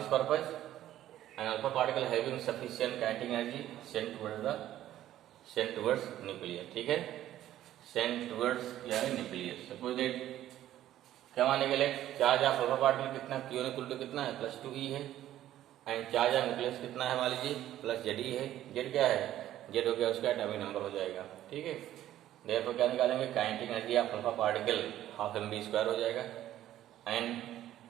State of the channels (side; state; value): left; quieter; 12.9 dB